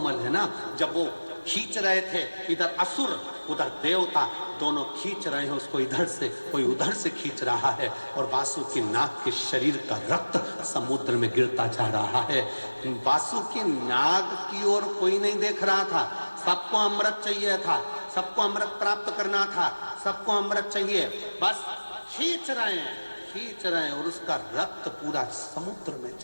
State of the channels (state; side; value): inverted; both; correlation -1.00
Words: है ना। जब वो खींच रहे थे, इधर असुर उधर देवता, दोनों खींच रहे हैं उसको, इधर से कोई उधर से खींच रहा है, और वासुकी नाग के शरीर का रक्त समुद्र में गिरता जा रहा है। वासुकी नाग की ओर कोई नहीं देख रहा था, सबको अमृत चाहिए था, सबको अमृत प्राप्त करना था, सबको अमृत चाहिए, बस खींच रहे हैं, खींच रहे हैं, और उसका रक्त पूरा समुद्र में